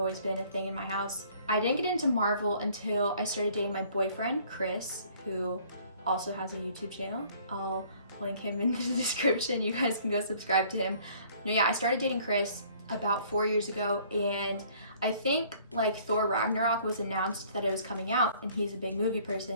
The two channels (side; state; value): both; inverted; correlation -0.57